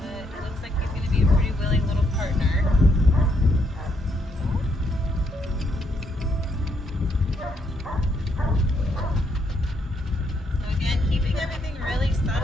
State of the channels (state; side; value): normal; both; correlation 0.74